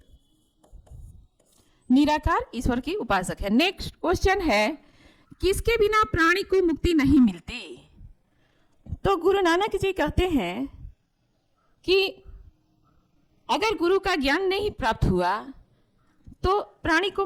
निराकार ईश्वर की उपासक है। नेक्स्ट क्वेश्चन है, किसके बिना प्राणी को मुक्ति नहीं मिलती? तो गुरु नानक जी कहते हैं कि अगर गुरु का ज्ञान नहीं प्राप्त हुआ तो प्राणी को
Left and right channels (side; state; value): both; identical; correlation 1.00